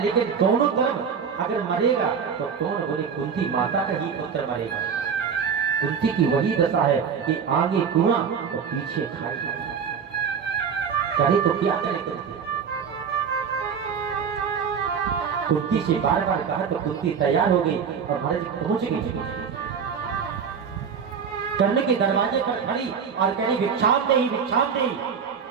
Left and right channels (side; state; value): left; quieter; 6.7 dB